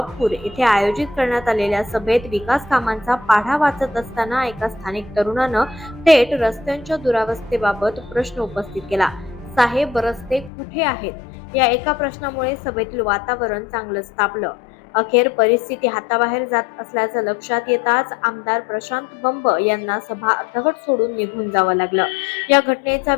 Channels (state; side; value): drops out; right; at 10.5 s